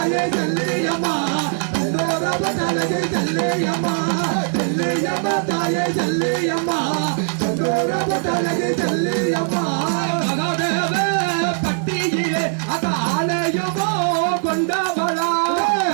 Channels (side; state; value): left; silent; 58 dB below the other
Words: செல்லியம்மா செந்தூர பொட்டலகி செல்லியம்மா செல்லியம்மா தாயே செல்லியம்மா செந்தூர பொட்டலகி செல்லியம்மா மகாதேவ பட்டியிலே அத ஆலயமோ கொண்டவளா